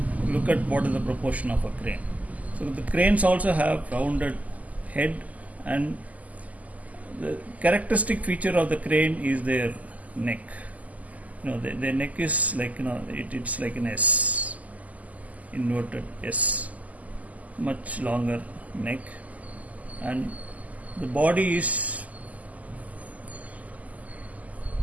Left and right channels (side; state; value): left; late; 0.075 ms